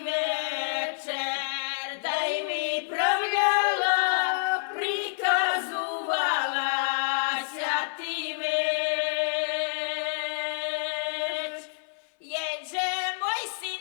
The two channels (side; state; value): right; silent; 59 dB below the other